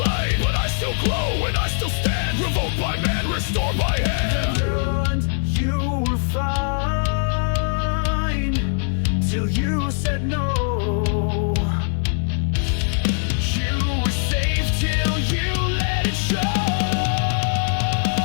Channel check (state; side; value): silent; right; 65 dB below the other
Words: But I still glow and I still stand, revoked by man, restored by hand. And you were fine till you said no. You were safe till you let it show.